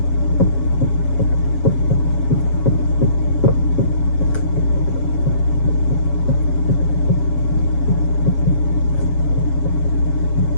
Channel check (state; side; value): late; right; 7.2 ms